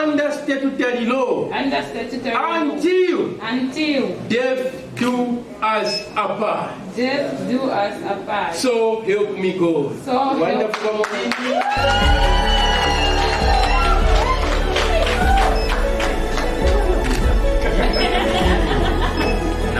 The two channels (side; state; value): both; identical; correlation 1.00